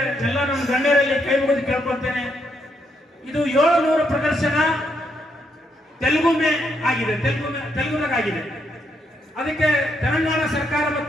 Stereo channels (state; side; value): normal; both; correlation 0.77